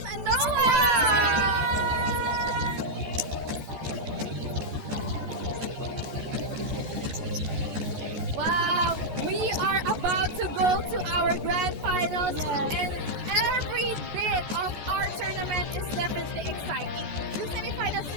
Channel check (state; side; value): late; left; 14 ms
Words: Noah! Wow, we are about to go to our grand finals, and every bit of our tournament is definitely exciting. Yung semifinals